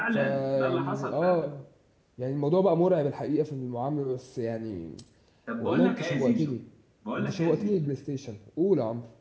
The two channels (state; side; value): identical; both; correlation 1.00